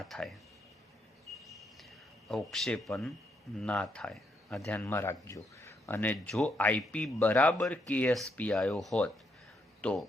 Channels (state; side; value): normal; both; correlation 0.77